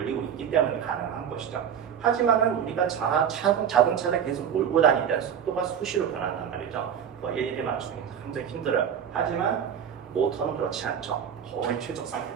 있기 때문에 가능한 것이죠. 하지만은 우리가 자동차를 계속 몰고 다니는 속도가 수시로 변한단 말이죠. 일일이 맞추기 굉장히 힘들어요. 하지만 모터는 그렇지 않죠. 거의 최적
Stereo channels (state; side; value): quieter; left; 8.4 dB